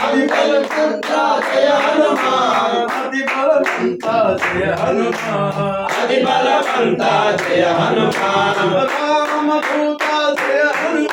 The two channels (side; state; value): both; identical; correlation 1.00